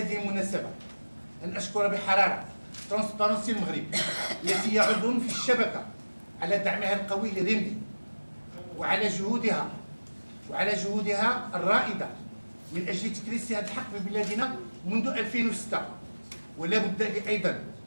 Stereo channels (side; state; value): both; inverted; correlation -1.00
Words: المناسبة أن أشكر بحرارة ترانسبارنسي المغرب التي هي عضو في الشبكة على دعمها القوي لريمدي وعلى جهودها الرائدة من أجل تكريس هذا الحق في بلادنا منذ 2006. ولا بد لي أيضا